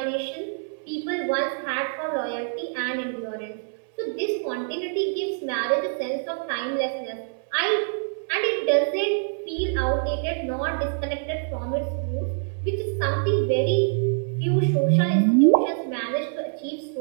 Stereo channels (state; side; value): silent; left; 61 dB below the other